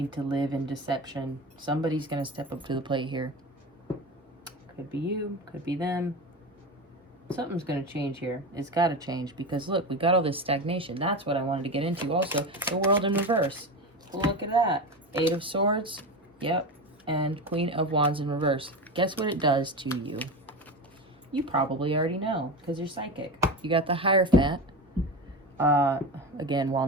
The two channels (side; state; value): both; normal; correlation 0.24